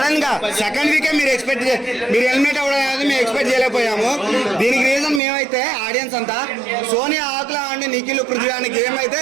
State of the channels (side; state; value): left; drops out; at 5.2 s